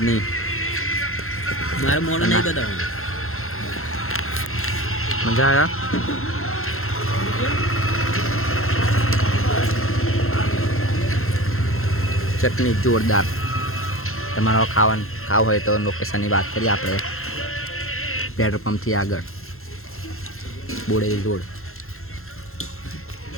મારે મોડું નહીં બતાવું. મજા આવ્યા ચટણી જોરદાર. તમારો ખાવું હોય તો લોકેશનની વાત કરીએ આપણે પેટ્રોલ પંપથી આગળ બોડેલી રોડ.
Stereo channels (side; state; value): right; late; 0.62 ms